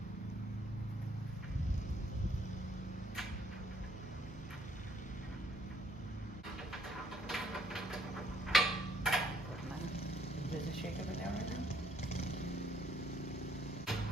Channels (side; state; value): both; normal; correlation 0.67